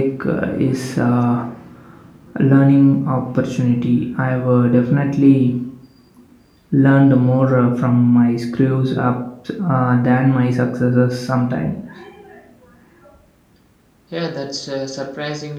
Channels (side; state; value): both; identical; correlation 1.00